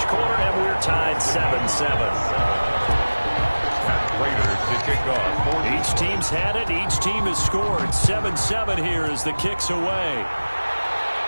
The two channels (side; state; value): both; inverted; correlation -1.00